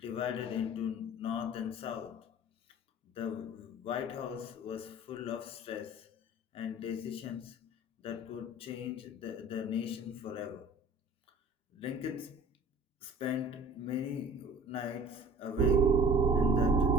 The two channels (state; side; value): normal; both; correlation 0.45